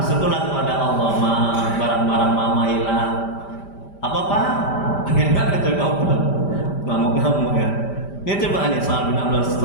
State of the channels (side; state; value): right; late; 5.1 ms